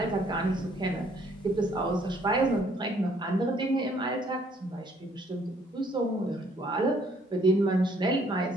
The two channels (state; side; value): normal; both; correlation 0.64